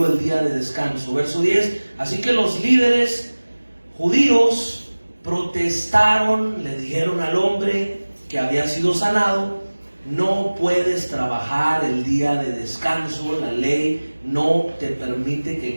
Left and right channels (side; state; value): both; inverted; correlation -1.00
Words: 10, así que los líderes judíos protestaron, le dijeron al hombre que había sido sanado: no puedes trabajar el día de descanso, la ley no te